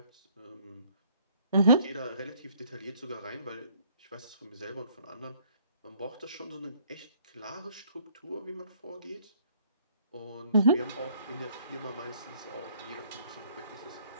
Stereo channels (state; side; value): inverted; both; correlation -0.62